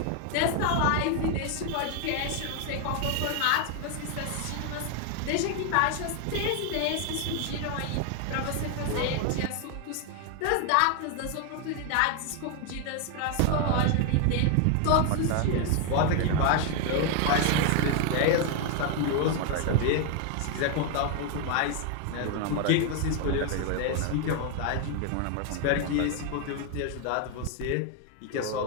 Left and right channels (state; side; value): different; both; correlation 0.01